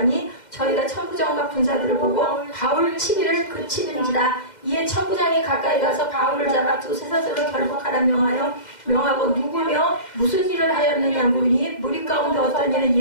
저희가 천부장과 군사들을 보고 바울 치기를 그치는지라. 이에 천부장이 가까이 가서 바울을 잡아 두세 사슬로 결박하라 명하고 누구며 무슨 일을 하였느냐 물으니 무리 가운데 어떤 이는 이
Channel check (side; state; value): right; late; 2.1 ms